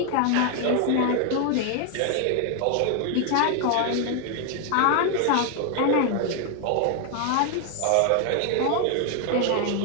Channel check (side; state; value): both; different; correlation 0.00